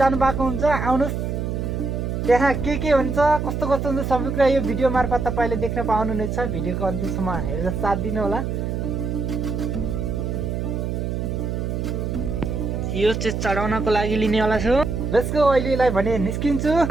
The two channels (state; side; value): noise; right; hum, 2 dB below the sound